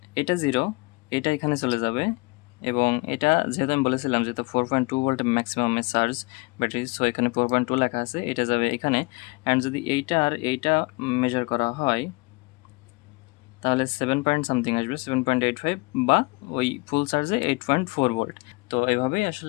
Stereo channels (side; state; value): right; quieter; 26.7 dB